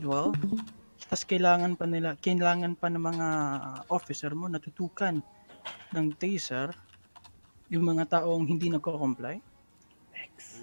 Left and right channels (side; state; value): both; inverted; correlation -1.00